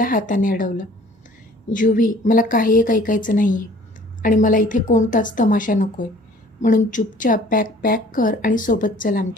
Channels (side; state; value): both; normal; correlation 0.52